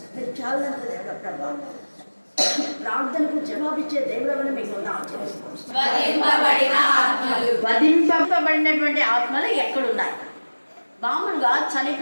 మీరు చాలంత దేవుడు ప్రభా, ప్రార్థనకు జవాబిచ్చే దేవుడని మీకు వధింపబడినటువంటి ఆత్మలు ఎక్కడున్నాయి? మామూలుగా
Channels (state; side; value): inverted; both; correlation -1.00